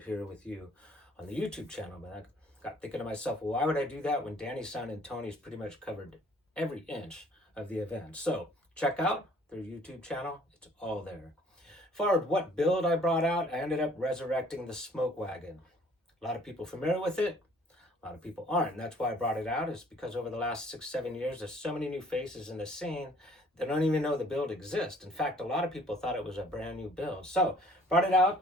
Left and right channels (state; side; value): normal; both; correlation 0.57